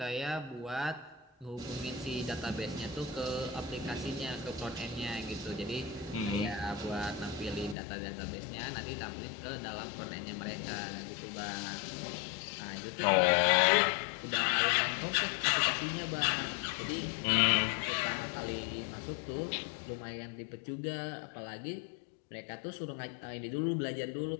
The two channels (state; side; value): drops out; right; at 7.8 s